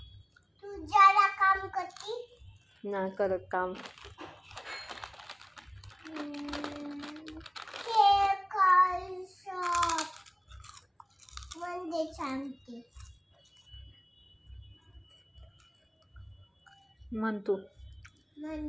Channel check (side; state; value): both; identical; correlation 1.00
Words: तू जरा काम करती. नाही करत काम. म्हणजे सांगते म्हण तू.